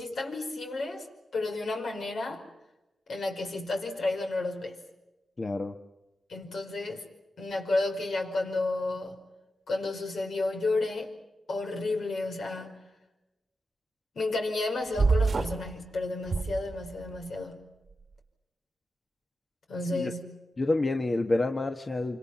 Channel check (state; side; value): normal; both; correlation 0.90